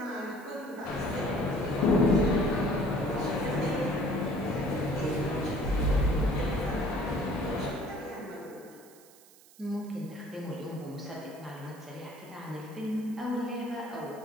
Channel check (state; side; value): noise; right; hiss, 24 dB below the sound